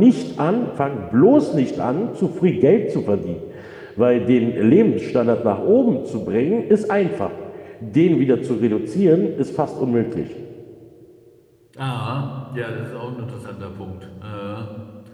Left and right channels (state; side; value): identical; both; correlation 1.00